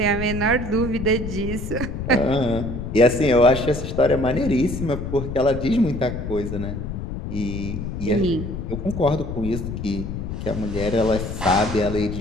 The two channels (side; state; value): left; noise; rumble, 6 dB below the sound